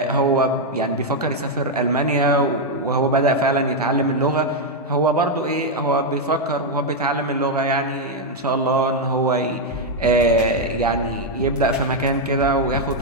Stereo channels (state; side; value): normal; both; correlation 0.01